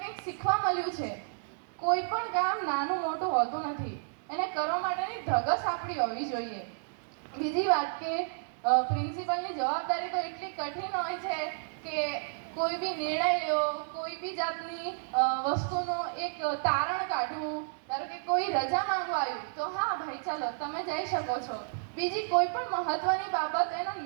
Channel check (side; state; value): left; silent; digital silence